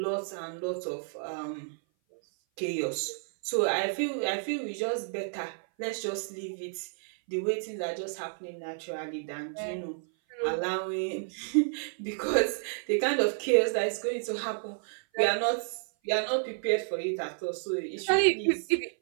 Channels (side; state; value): left; silent; 56 dB below the other